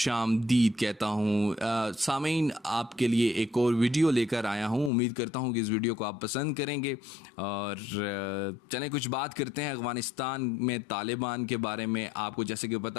कहता हूँ। सामीन, आपके लिए एक और वीडियो लेकर आया हूँ। उम्मीद करता हूँ कि इस वीडियो को आप पसंद करेंगे और चलें कुछ बात करते हैं अफ़गानिस्तान में तालिबान के बारे में। आपको जैसे कि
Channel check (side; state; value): right; drops out; at 4.9 s